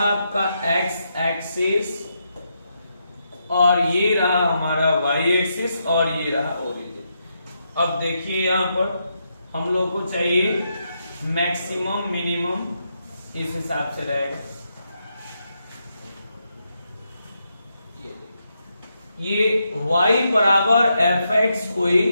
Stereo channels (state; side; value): inverted; both; correlation -0.82